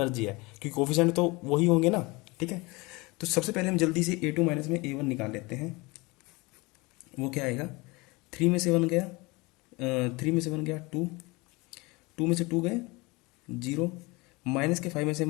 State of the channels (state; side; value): quieter; right; 24.6 dB